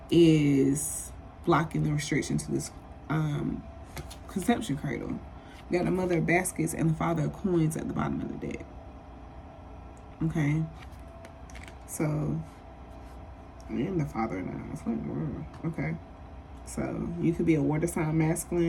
is blocking the restriction to this conception cradle. You got the Mother of Baskets and the Father of Coins at the bottom of the deck. Okay. So, and the Father of Knives. Okay. So you could be a water sign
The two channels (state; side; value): identical; both; correlation 1.00